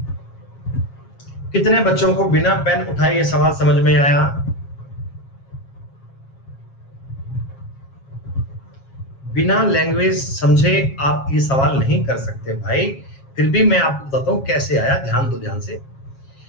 कितने बच्चों को बिना पेन उठाए ये सवाल समझ में आया? बिना लैंग्वेज समझे आप ये सवाल नहीं कर सकते भाई। फिर भी मैं आपको बताता हूं कैसे आया, ध्यान दो ध्यान से।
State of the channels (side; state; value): right; late; 7.4 ms